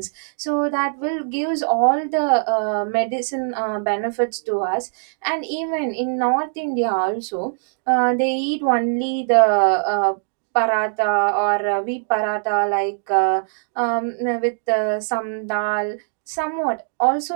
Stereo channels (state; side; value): silent; left; digital silence